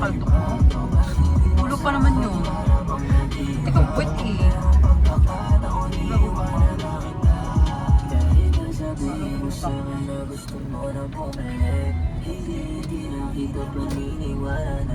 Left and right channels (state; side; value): identical; both; correlation 1.00